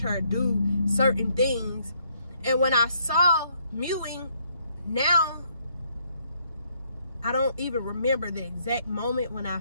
her do certain things. And when I saw mewing, now, I don't even remember the exact moment when I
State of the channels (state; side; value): inverted; both; correlation -0.70